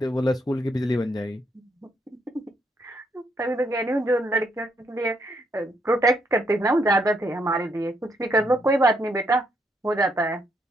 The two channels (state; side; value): normal; both; correlation 0.75